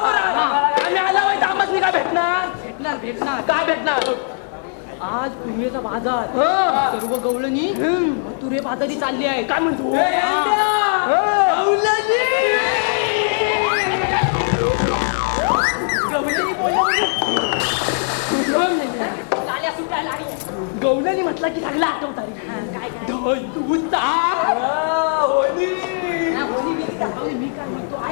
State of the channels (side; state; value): right; silent; 66 dB below the other